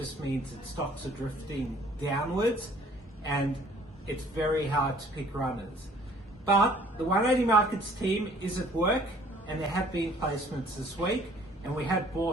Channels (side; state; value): both; normal; correlation 0.56